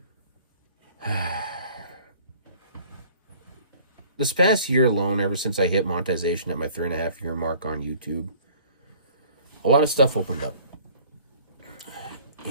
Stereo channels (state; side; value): inverted; both; correlation -0.52